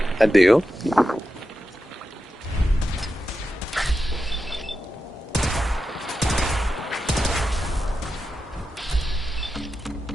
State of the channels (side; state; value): both; normal; correlation 0.90